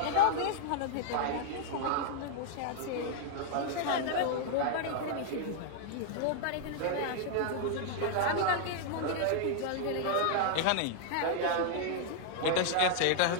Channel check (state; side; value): different; both; correlation -0.01